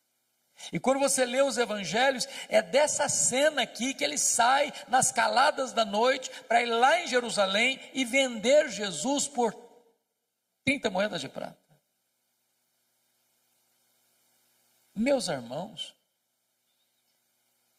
E quando você lê os evangelhos, é dessa cena aqui que ele sai nas caladas da noite para ir lá em Jerusalém e vender Jesus por 30 moedas de prata. Meus irmãos,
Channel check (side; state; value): both; identical; correlation 1.00